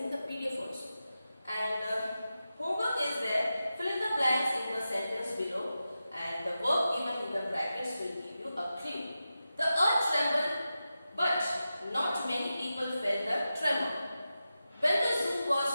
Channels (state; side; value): inverted; both; correlation -0.92